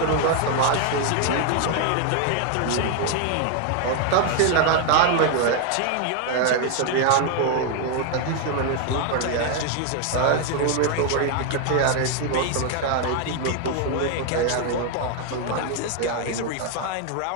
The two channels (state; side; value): different; both; correlation 0.01